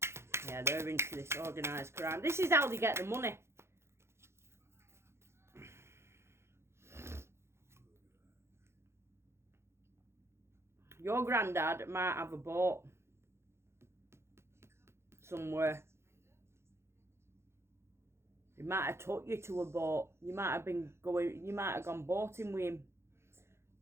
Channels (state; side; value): late; left; 0.13 ms